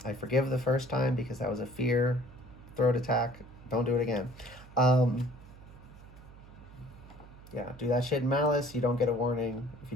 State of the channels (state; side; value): noise; right; hum, 19 dB below the sound